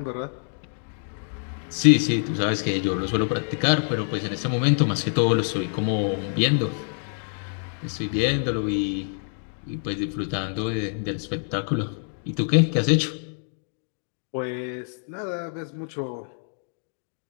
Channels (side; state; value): right; silent; digital silence